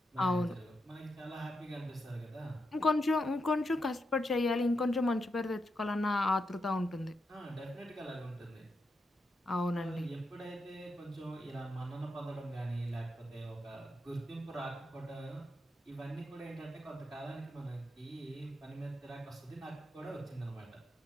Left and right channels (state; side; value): normal; both; correlation 0.84